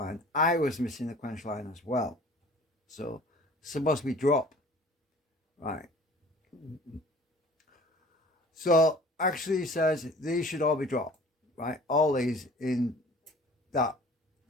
I was missing a quench line as well. So it's supposed to be drop. Right. So actually he says these should all be dropped. Right. All these in that.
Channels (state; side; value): normal; both; correlation 0.48